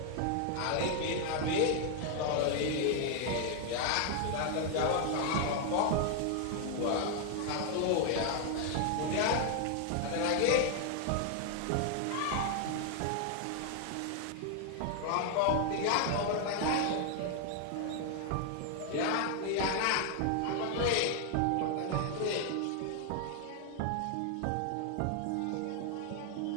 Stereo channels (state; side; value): different; both; correlation 0.00